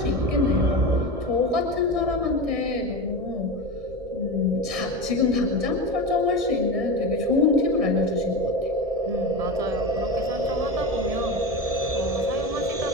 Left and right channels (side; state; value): left; late; 1.6 ms